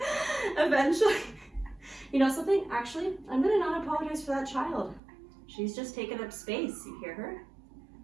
Eventually, you know something? Actually, I'm gonna not apologize for that child. She's just taking up space. You hear her?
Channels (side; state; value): left; drops out; at 5.0 s